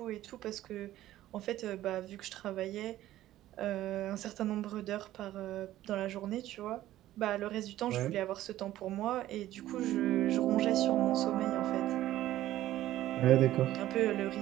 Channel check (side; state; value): left; quieter; 14.2 dB